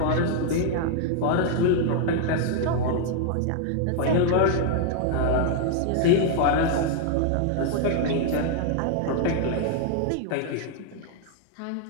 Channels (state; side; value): different; both; correlation 0.00